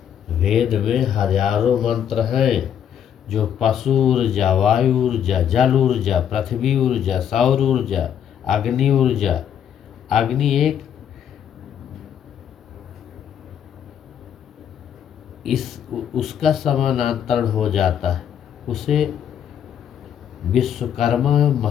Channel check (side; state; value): right; quieter; 9.1 dB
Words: वेद में हजारों मंत्र हैं जो पशु ऊर्जा, वायु ऊर्जा, जल ऊर्जा, पृथ्वी ऊर्जा, सौर ऊर्जा, अग्नि ऊर्जा। अग्नि एक उसका समानांतर हो जाता है, उसे विश्वकर्मा